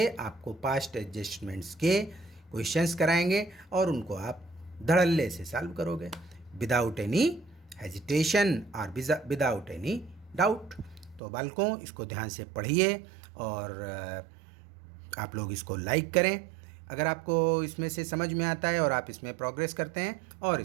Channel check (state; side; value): drops out; left; at 11.2 s